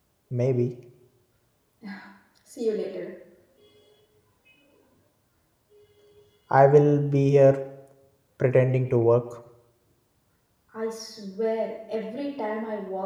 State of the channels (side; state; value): both; identical; correlation 1.00